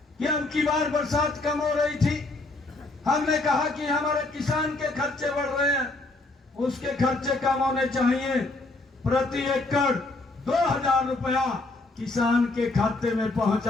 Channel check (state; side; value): quieter; right; 3.1 dB